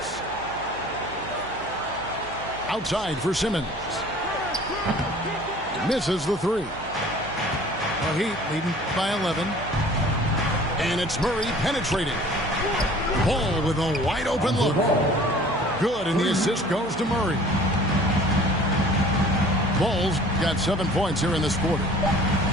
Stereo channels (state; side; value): noise; right; hum, 17 dB below the sound